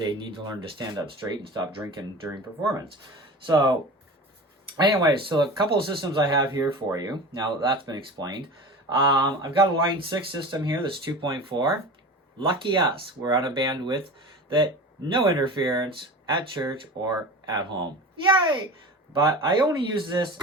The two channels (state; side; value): normal; both; correlation 0.33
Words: need to learn to stand up straight and stop drinking during performance. So, anyways, so a couple of systems I have here for you. Now that that's been explained. I've got a Line 6 system here that's 2.4. Lucky us, we're on a bandwidth that no interference at church or at home. Yay! But I only use this